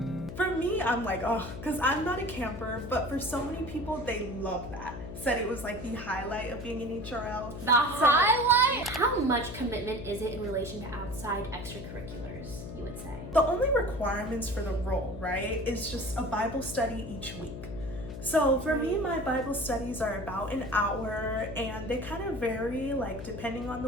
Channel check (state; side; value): noise; left; hum, 9 dB below the sound